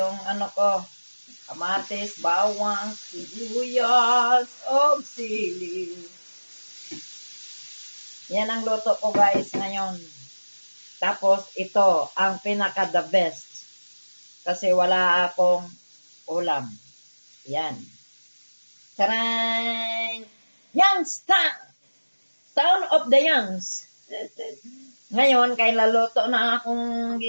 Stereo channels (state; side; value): inverted; both; correlation -1.00